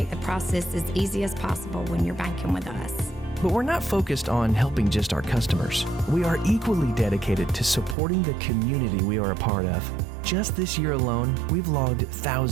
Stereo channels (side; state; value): left; drops out; at 8.0 s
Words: the process as easy as possible when you're banking with us. But we're not focused on helping just our customers. We are equally dedicated to supporting the community we are a part of. Just this year alone, we've logged